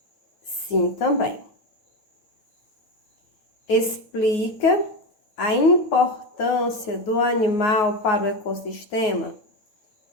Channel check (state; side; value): late; right; 9.5 ms